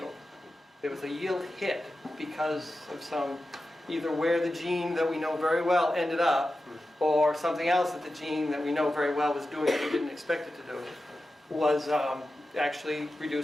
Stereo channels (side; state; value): both; normal; correlation 0.92